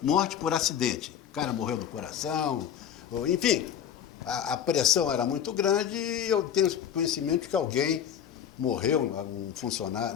morte por acidente. O cara morreu do coração, enfim, a pressão era muito grande e eu tenho conhecimento de que alguém morreu, um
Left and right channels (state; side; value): quieter; right; 9.2 dB